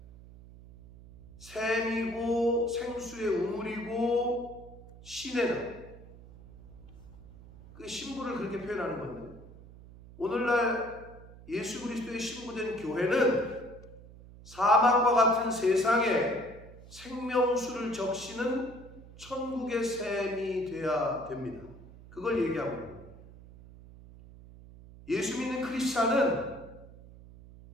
샘이고 생수의 우물이고 시내다. 그 신부를 그렇게 표현하는 건데, 오늘날 예수 그리스도의 신부된 교회는 사막과 같은 세상에 생명수를 적시는 천국의 샘이 되어야 됩니다. 그걸 얘기하고 있는 거예요. 예수 믿는 크리스찬은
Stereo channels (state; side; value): noise; right; hum, 19 dB below the sound